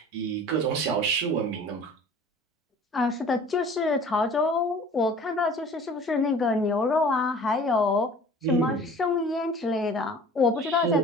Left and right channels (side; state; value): both; normal; correlation 0.46